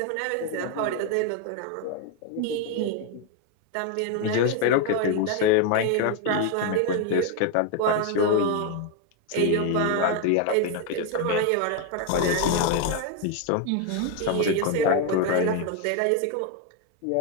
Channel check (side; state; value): both; different; correlation 0.01